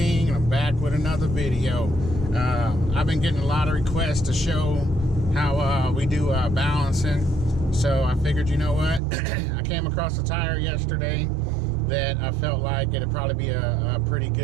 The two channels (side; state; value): left; drops out; at 9.0 s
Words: and I'm back with another video. I've been getting a lot of requests to show how we do balancing, so I figured, you know what, I came across a tire yesterday that I felt like it'd probably be a pretty